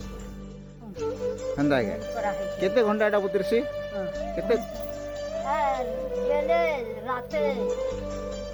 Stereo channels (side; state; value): both; identical; correlation 1.00